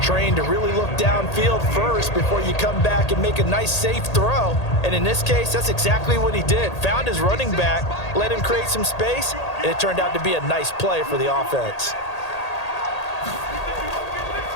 to really look downfield first before you come back and make a nice, safe throw. And in this case, that's exactly what he did. Found his running back, let him create some space, and it turned out to be a nice play for the offense.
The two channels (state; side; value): late; right; 1.8 ms